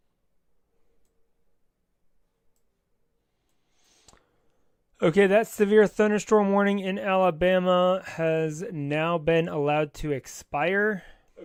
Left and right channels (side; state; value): both; identical; correlation 1.00